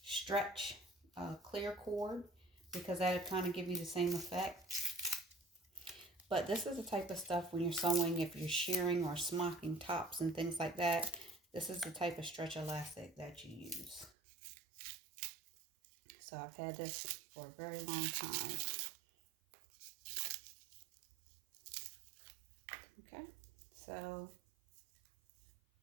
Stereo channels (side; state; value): left; drops out; at 14.1 s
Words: stretch clear cord, because that'll kind of give you the same effect. But this is the type of stuff when you're sewing, if you're shearing or smocking tops and things like that, this is the type of stretch elastic that you use. So I've had this for a very long time. Okay, so